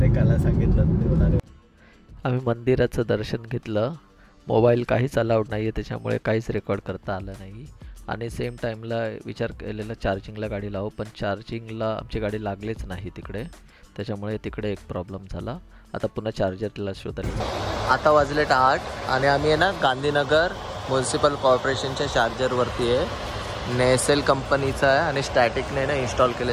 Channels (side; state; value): both; identical; correlation 1.00